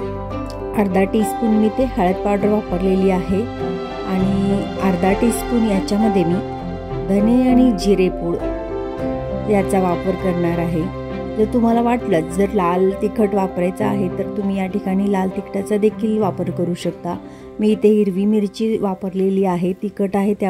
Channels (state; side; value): identical; both; correlation 1.00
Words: अर्धा टीस्पून मी ते हळद पावडर वापरलेली आहे आणि अर्धा टीस्पून याच्यामध्ये मी धने आणि जिरे पूड याचा वापर करणार आहे। जर तुम्हाला वाटलं जर लाल तिखट वापरायचं आहे तर तुम्ही या ठिकाणी लाल तिखटाचा देखील वापर करू शकता। मी इथे हिरवी मिरची वापरलेली आहे, तिखट आहे